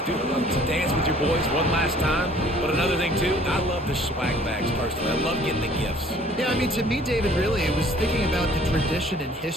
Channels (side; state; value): both; normal; correlation 0.55